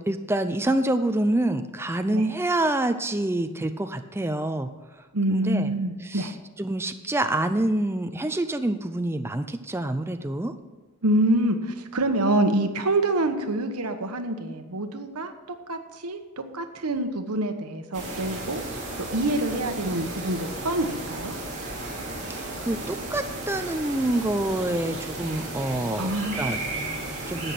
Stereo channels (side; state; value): both; normal; correlation 0.48